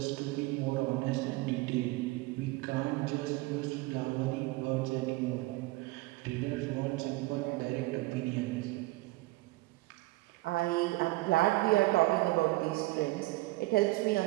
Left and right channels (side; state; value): left; quieter; 21.0 dB